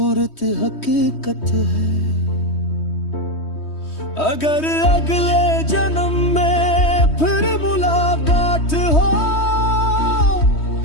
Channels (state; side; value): late; right; 3.2 ms